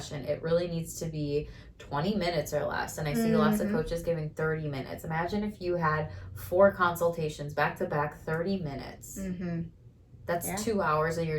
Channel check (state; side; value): identical; both; correlation 1.00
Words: It really needs to be 20 minutes or less. And I see lots of coaches giving 30 minutes. Imagine if you had 4 consultations back to back, 30 minutes. That's 2 hours of